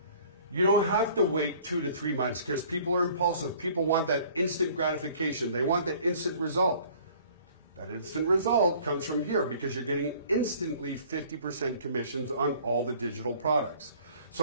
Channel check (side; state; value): both; inverted; correlation -0.52